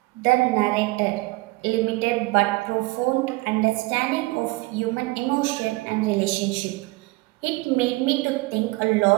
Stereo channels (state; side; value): quieter; left; 22.6 dB